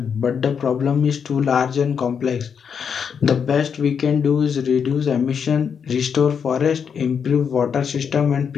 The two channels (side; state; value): right; quieter; 7.0 dB